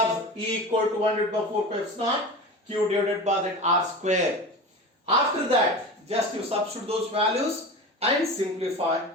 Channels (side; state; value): both; normal; correlation 0.30